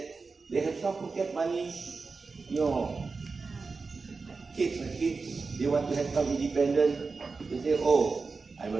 they have some pocket money. Kids are kids. They want to have some independence. They say, oh, I'm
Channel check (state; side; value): quieter; left; 4.3 dB